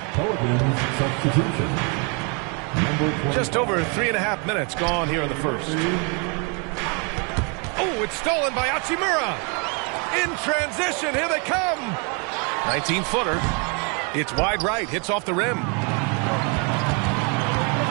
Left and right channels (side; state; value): left; quieter; 34.9 dB